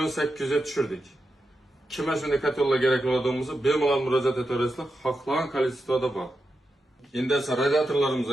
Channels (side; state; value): both; normal; correlation 0.88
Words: 800 ga tushirdik. Kimga shunday kotellar kerak bo'ladiganimizni bemalol murojaat etaverasizlar. Xohlagan kolleksiyada bor. Endi esa